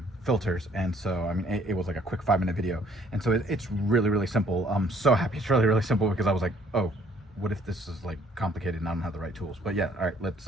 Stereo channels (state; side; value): normal; both; correlation 0.61